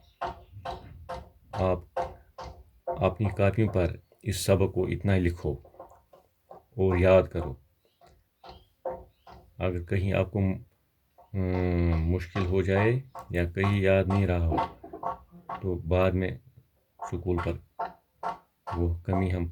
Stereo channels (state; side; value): identical; both; correlation 1.00